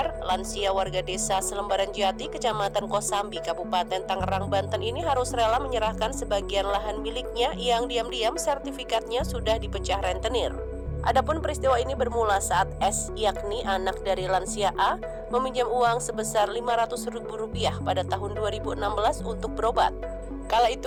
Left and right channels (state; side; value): identical; both; correlation 1.00